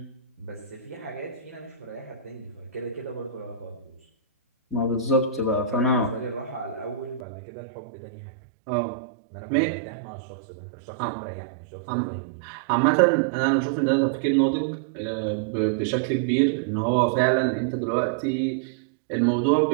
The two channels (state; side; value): drops out; left; at 7.2 s